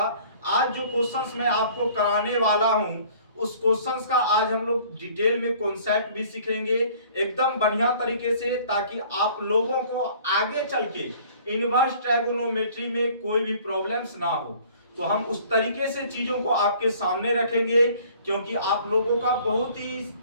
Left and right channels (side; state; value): both; inverted; correlation -0.53